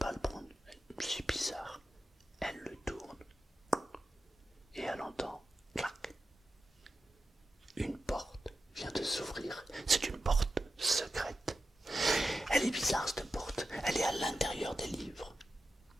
le prendre. C'est bizarre. Elle le tourne. Et elle entend clac. Une porte vient de s'ouvrir. C'est une porte secrète. Elle est bizarre cette porte. Elle est à l'intérieur des livres.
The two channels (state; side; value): normal; both; correlation 0.92